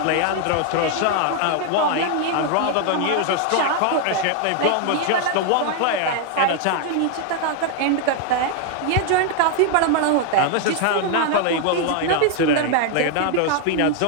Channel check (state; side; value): different; both; correlation 0.00